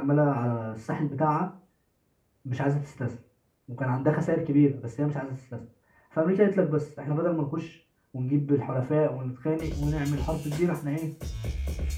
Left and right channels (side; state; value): both; identical; correlation 1.00